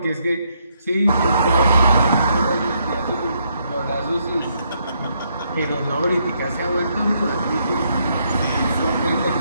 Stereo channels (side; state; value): both; inverted; correlation -0.74